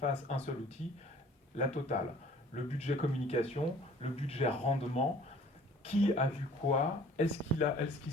un seul outil, la totale. Le budget communication, le budget rendement, qui a vu quoi, est-ce qu'il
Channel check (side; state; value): both; normal; correlation 0.51